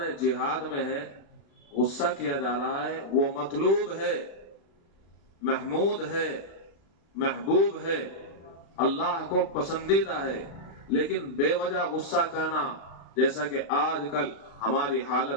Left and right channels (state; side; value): late; right; 36 ms